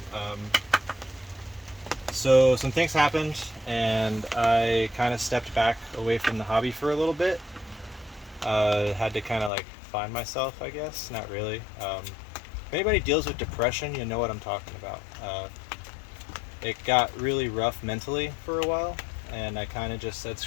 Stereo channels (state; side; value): drops out; right; at 9.5 s